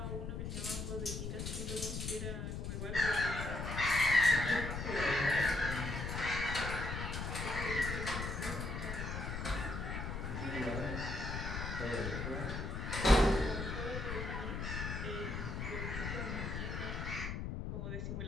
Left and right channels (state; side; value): noise; left; rumble, 4 dB below the sound